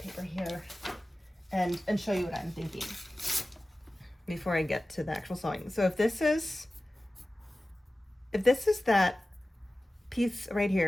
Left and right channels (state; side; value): normal; both; correlation 0.96